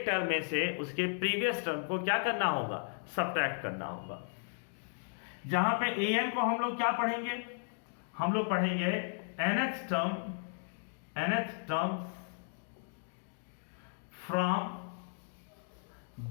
टर्म में से उसके प्रीवियस टर्म को क्या करना होगा? सब्ट्रैक्ट करना होगा। जहां पे an को हम लोग क्या पढ़ेंगे? हम लोग पढ़ेंगे nth टर्म फ्रॉम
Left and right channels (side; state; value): right; silent; digital silence